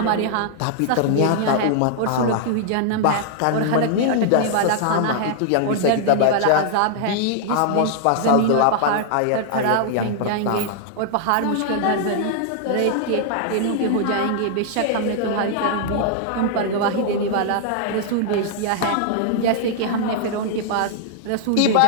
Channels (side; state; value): both; different; correlation -0.01